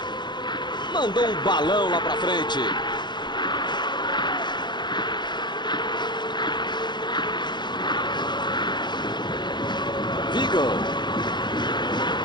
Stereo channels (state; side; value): late; right; 0.22 ms